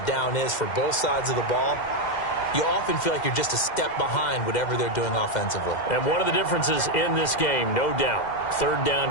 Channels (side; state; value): right; late; 2.1 ms